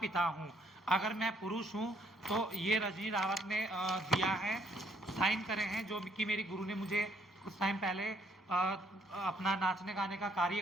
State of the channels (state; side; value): normal; both; correlation 0.68